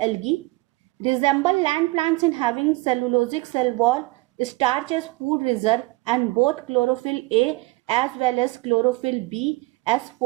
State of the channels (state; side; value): quieter; left; 22.1 dB